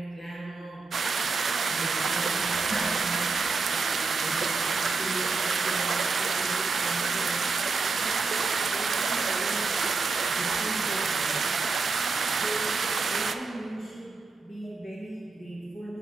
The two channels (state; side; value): quieter; left; 4.3 dB